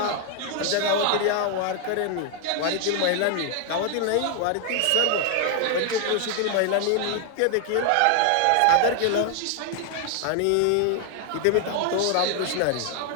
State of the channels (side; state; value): both; different; correlation 0.00